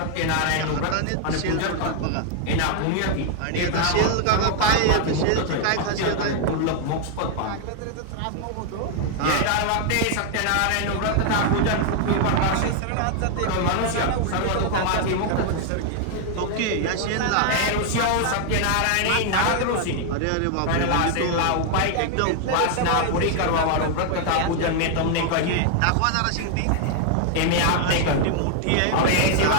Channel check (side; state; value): both; different; correlation 0.00